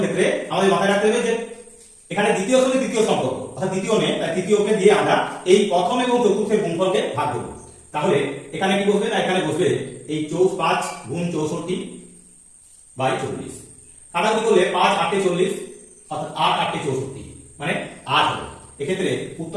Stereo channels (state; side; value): identical; both; correlation 1.00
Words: ক্ষেত্রে আমাদের মাথায় রাখতে হবে যে এখানে দ্বিতীয় সঙ্গে তৃতীয় সম্পর্ক, অর্থাৎ দ্বিতীয় নেই, তাই তৃতীয়কে দিয়ে আমরা এই প্রথম এবং চতুর্থের গুণফলকে ভাগ করব। তাহলে এখানে কি বসবে না, এখানে বসবে এই 5 গুণ 64 বাই 40 কাটাকুটি করলে 5 8 40 অর্থাৎ 8 8 64 মানে 8 হবে। এক্ষেত্রে